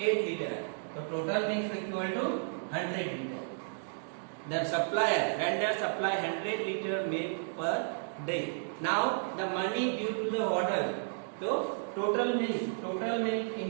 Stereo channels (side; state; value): left; silent; digital silence